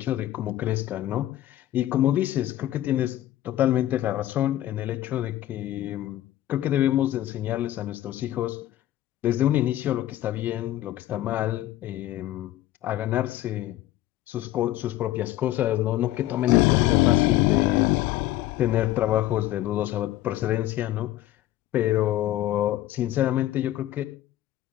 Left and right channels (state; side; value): quieter; right; 14.2 dB